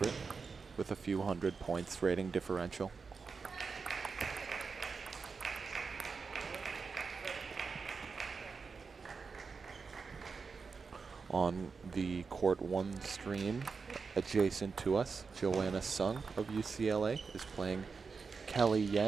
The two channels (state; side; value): quieter; left; 5.0 dB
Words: with a few hundred points rating differential. On the Court 1 stream, adjacent to us, Joanna Sung of UCLA is playing Kelly